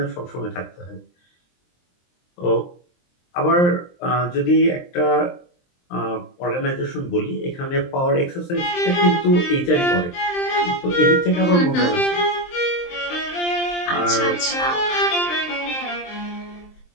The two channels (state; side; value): late; right; 23 ms